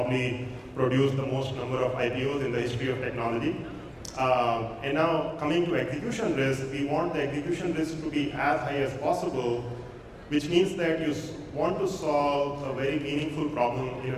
produce the most number of IPOs in the history of technology. And now coming to execution risk, we want the execution risk to be as high as possible, which means that you want to solve a very meaningful problem in a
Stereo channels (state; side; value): identical; both; correlation 1.00